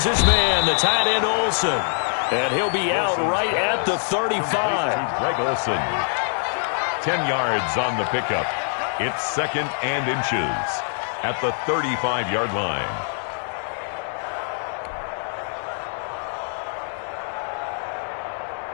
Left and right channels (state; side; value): silent; right; 63 dB below the other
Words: his man, the tight end Olsen. And he'll be out right at the 35. Greg Olsen. 10 yards on the pickup. It's 2nd and inches at the 35-yard line.